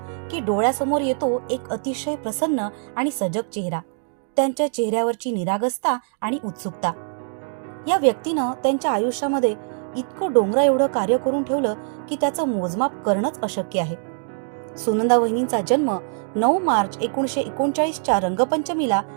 की डोळ्यासमोर येतो एक अतिशय प्रसन्न आणि सजग चेहरा, त्यांच्या चेहऱ्यावरची निरागसता आणि उत्सुकता. या व्यक्तीनं त्यांच्या आयुष्यामध्ये इतकं डोंगरा एवढं कार्य करून ठेवलं की त्याचं मोजमाप करणंच अशक्य आहे. सुनंदा वहिनींचा जन्म 9 मार्च 1939च्या रंगपंचमीला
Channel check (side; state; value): left; silent; digital silence